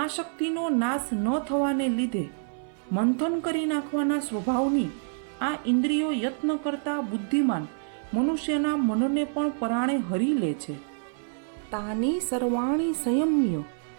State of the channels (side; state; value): left; silent; 60 dB below the other